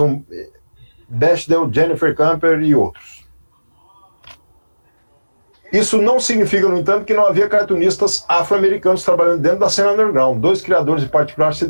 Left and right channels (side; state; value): both; inverted; correlation -1.00